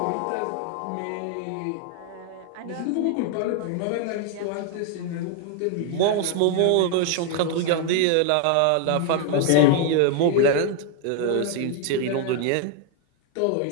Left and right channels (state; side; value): different; both; correlation 0.00